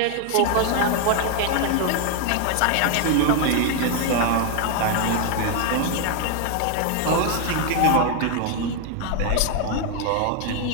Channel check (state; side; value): different; both; correlation 0.01